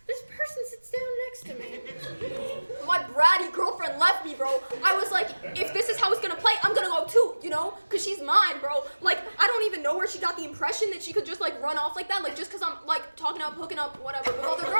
this person sits down next to me. My bratty girlfriend left me, bro. I was like, if this is how it's gonna play, I'm gonna go too, you know? Cause she's mine, bro. Like, I don't even know where she got the impression that she could just like run off like that. Like, just cause I'm like talking up, hooking up, whatever, with other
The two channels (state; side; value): inverted; both; correlation -1.00